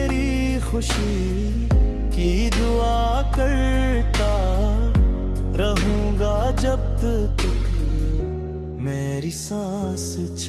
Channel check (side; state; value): both; identical; correlation 1.00